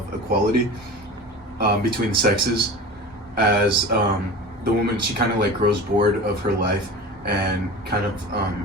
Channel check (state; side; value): normal; both; correlation 0.33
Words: equality between sexes, as the woman, she kind of like grows bored of her life and kind of